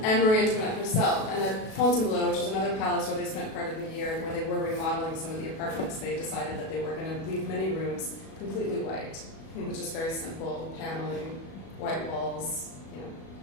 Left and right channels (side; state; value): right; late; 37 ms